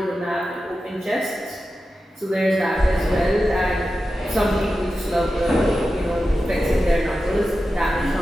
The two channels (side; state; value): both; normal; correlation 0.92